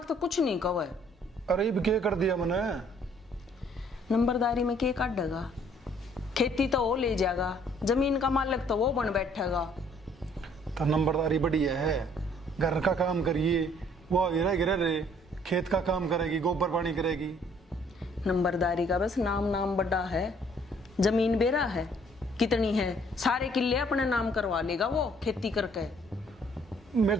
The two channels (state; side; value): normal; both; correlation 0.61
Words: तो कुछ नहीं कहे। अरे ये क्या कर दिया मैंने नंबरदारी में क्या काटेगा खेती तो वो ले जाएगा जमीन का मालिक तो वो बन बैठेगा। तो नंबरदारी बढ़िया है घर का काम करिए वो गिरा गिरा रहे खेत का काम करेगी गोबर पानी करेगी। नंबरदारी का बस नाम बड़ा है जमीन बेरा है कितनी है सारे किले अपने नाम करवा लेगा वो खेती करके। मेरे